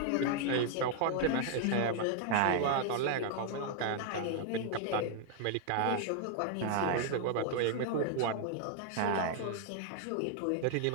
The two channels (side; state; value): both; different; correlation 0.00